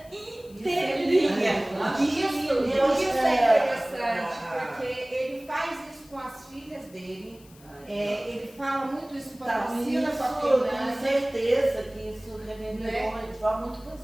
inteirinha. Isso é interessante, porque ele faz isso com as filhas dele. Ele fala muito isso com a Priscila, com a tenho Fernanda. certeza que isso reverberou Né? de forma muito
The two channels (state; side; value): noise; left; hiss, 25 dB below the sound